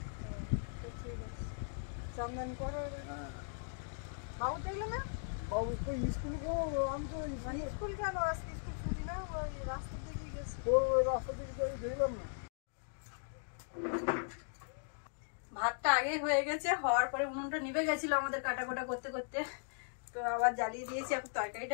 চন্দন করো। বাবু দেখলো না? বাবু তো স্কুল করবো, আমি তো স্কুল কেন? আজকে স্কুল ছুটি না, ওই রাস্তার দিকে গেছে। রাস্তা দিকে যাই, দেখলাম না। ভাতটা আগে হয়ে গেছে, হওয়ার পরে উনুনটা নিভে গেছিল আমাদের কাটাকোটা করতে করতে। তো আবার জ্বালিয়ে দিয়েছি, এখন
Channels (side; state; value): right; silent; digital silence